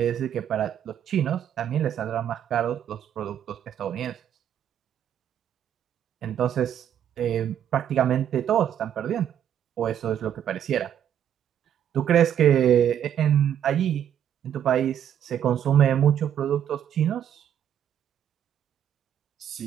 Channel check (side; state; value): left; quieter; 9.8 dB